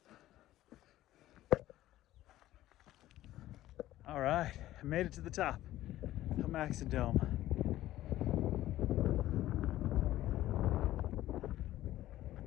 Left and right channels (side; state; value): right; quieter; 14.6 dB